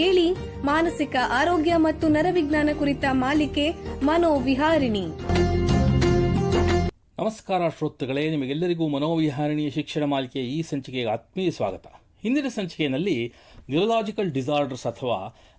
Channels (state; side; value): identical; both; correlation 1.00